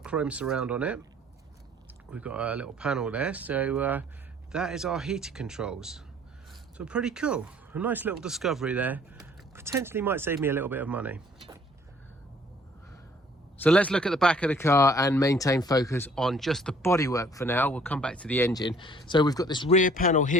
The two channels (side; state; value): both; normal; correlation 0.57